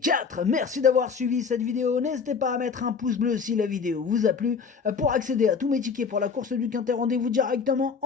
4. Merci d'avoir suivi cette vidéo. N'hésitez pas à mettre un pouce bleu si la vidéo vous a plu. Pour accéder à tous mes tickets pour la course du Quintet, rendez-vous directement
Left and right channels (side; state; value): right; quieter; 5.7 dB